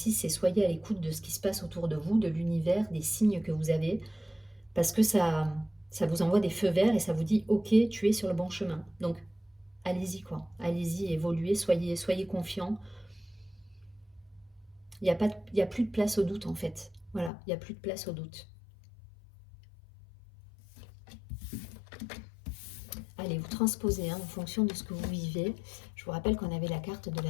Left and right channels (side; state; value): right; drops out; at 17.3 s